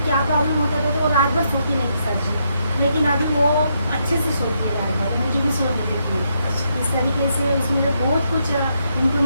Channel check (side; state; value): both; inverted; correlation -0.78